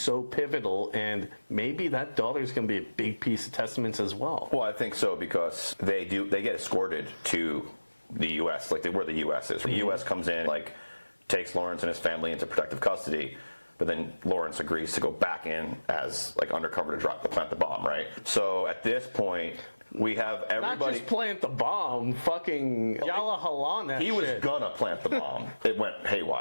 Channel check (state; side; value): inverted; both; correlation -1.00